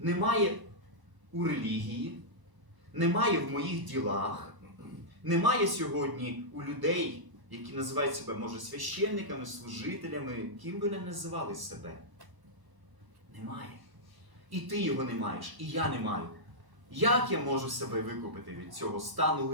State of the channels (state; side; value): late; left; 1.0 ms